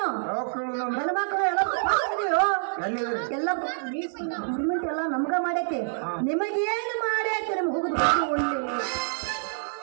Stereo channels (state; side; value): silent; left; digital silence